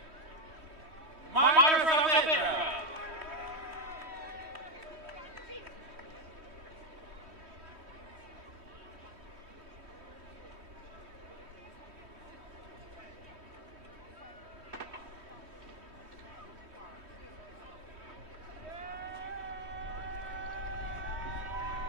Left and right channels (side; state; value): left; late; 3.2 ms